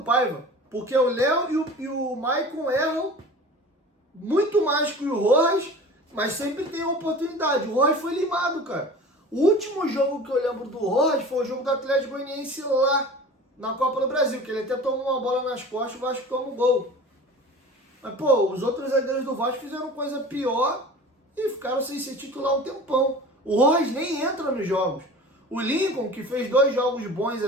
Paiva. Porque o Léo e o Maicon erram muito mais que o Rojas, mas sempre tem oportunidade. O Rojas foi limado, cara. O último jogo que eu lembro do Rojas foi o jogo do Atlético Goianiense lá na Copa do Brasil, que ele até tomou uma bola nas costas e o Vasco toma um gol. Mas, pô, os outros zagueiros do Vasco fizeram coisa pior e ficaram sem ser titular um tempão. O Rojas nem entra nos jogos. O Lincoln, que fez 2 jogos bons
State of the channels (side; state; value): both; normal; correlation 0.39